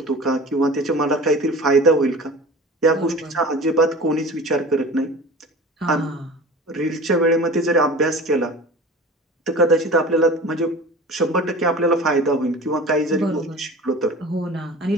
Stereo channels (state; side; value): normal; both; correlation 0.38